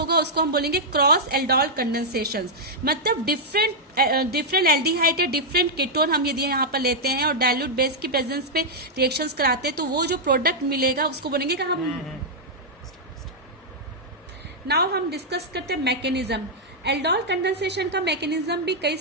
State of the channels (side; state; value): both; normal; correlation -0.06